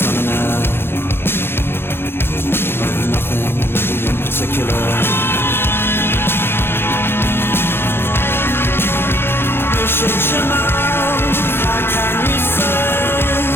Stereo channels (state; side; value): late; right; 0.11 ms